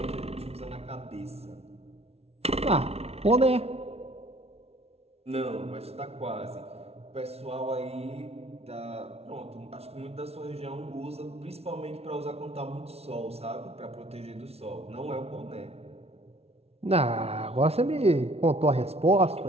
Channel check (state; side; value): late; left; 0.30 ms